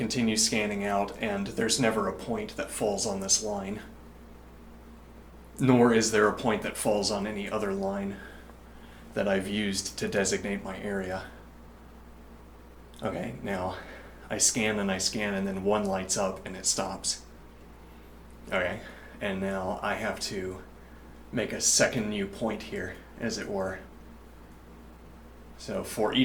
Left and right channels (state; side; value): identical; both; correlation 1.00